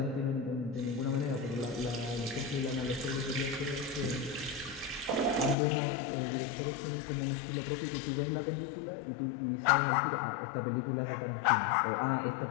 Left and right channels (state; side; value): drops out; right; at 5.6 s